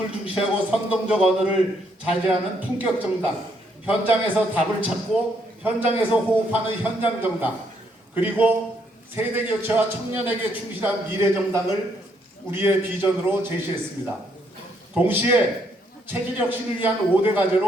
중시하고 선동적 언어를 자제하는 품격정당, 현장에서 답을 찾고 현장에서 호흡하는 현장정당, 그리고 세대교체와 청년에게 충실한 미래정당을 우리의 비전으로 제시했습니다. 동시에 체질 혁신을 위한 5대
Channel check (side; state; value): both; normal; correlation 0.72